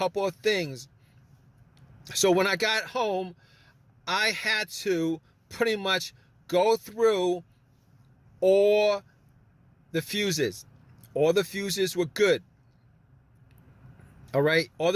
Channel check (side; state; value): both; identical; correlation 1.00